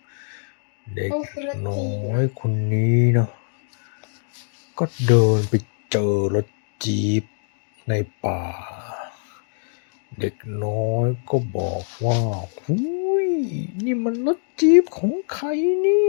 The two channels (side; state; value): right; silent; digital silence